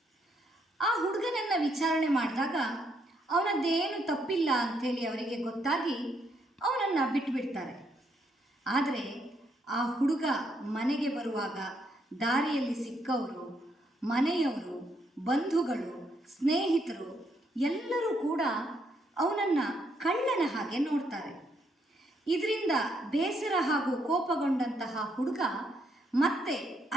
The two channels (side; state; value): both; normal; correlation 0.74